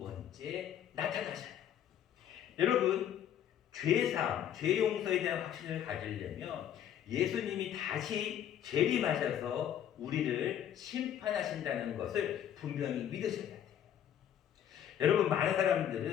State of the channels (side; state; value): right; quieter; 10.0 dB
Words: 나타나셔요. 여러분, 죄사함, 죄 용서에 대한 확신을 가지려면 예수님이 다시 재림하셔서 우리를 심판하신다는 것을 분명히 믿으셔야 돼요. 여러분, 많은